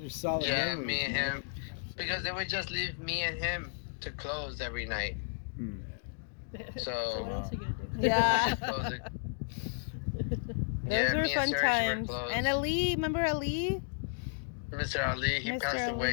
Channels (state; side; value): silent; right; digital silence